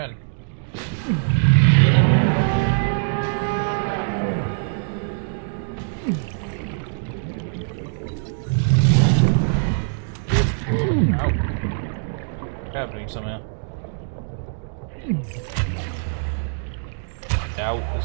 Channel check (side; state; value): left; silent; digital silence